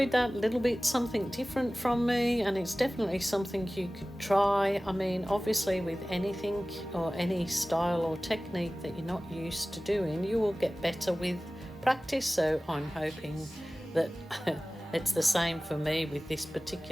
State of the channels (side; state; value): both; normal; correlation 0.97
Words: that little bit something different from me, and it's definitely something you could try. I mean, obviously with anything or any style or technique that you're not used to doing, you will get better with practice. So I'm hoping that it's the same for me with this